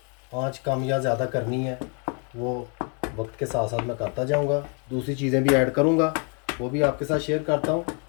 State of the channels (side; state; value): right; quieter; 37.9 dB